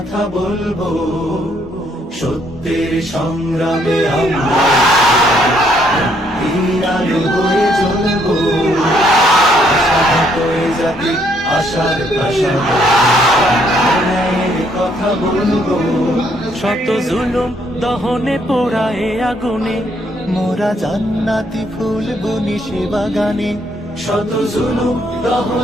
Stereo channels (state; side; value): normal; both; correlation 0.69